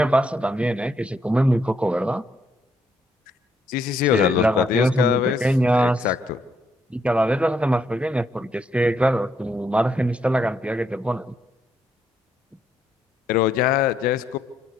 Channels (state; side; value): normal; both; correlation 0.74